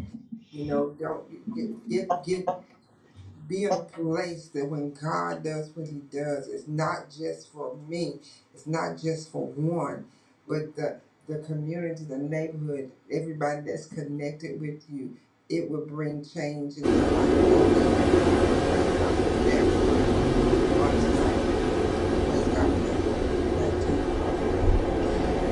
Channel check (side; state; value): both; identical; correlation 1.00